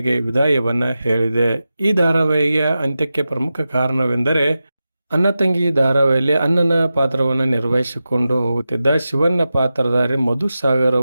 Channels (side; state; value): both; inverted; correlation -0.92